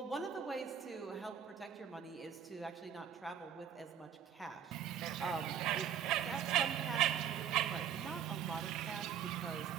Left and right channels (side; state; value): left; quieter; 8.7 dB